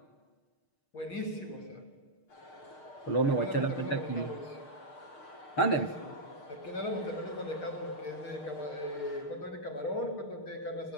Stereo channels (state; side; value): late; right; 6.6 ms